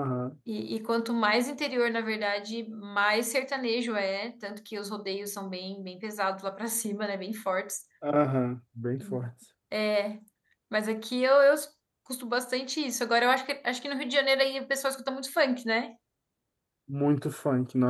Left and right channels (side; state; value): both; identical; correlation 1.00